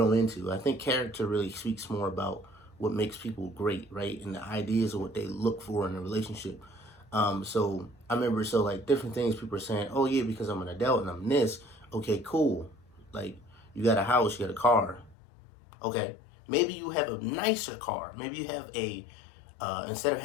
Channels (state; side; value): drops out; right; at 15.2 s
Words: into. I think character really speaks more about what makes people great, right? And the ideas of what they look for in a relationship. So I remember, different things people are saying, oh yeah, because I'm an adult and I'm this. Okay, cool. Like, you got a house, you got a car. Okay, maybe you have a nicer car. Maybe you have instead of